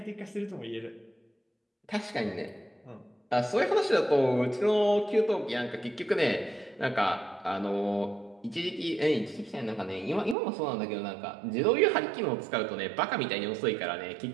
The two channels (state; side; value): drops out; left; at 10.4 s